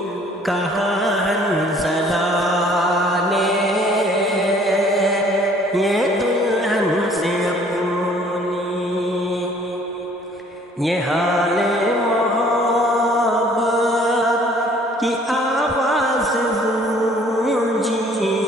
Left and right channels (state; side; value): normal; both; correlation 0.56